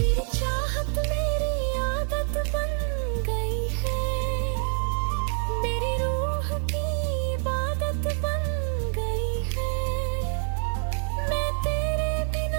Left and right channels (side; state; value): left; silent; 57 dB below the other